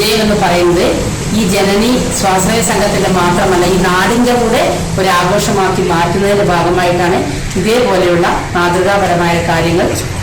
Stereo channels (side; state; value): both; identical; correlation 1.00